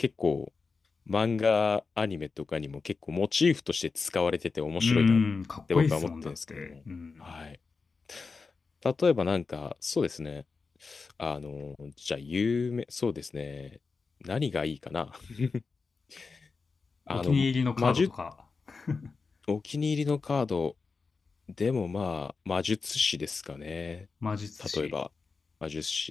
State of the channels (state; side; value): quieter; right; 4.6 dB